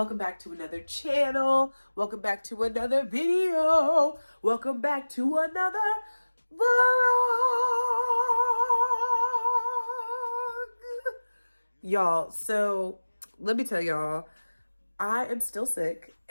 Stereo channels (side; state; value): both; inverted; correlation -1.00